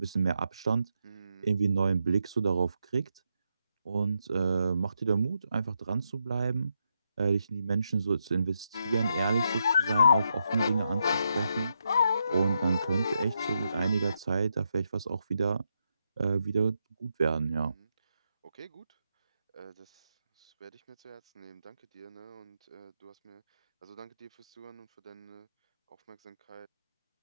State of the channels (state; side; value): inverted; both; correlation -0.82